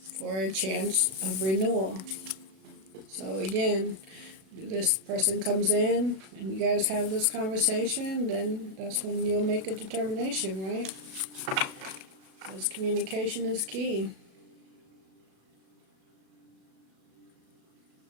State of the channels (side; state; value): left; late; 37 ms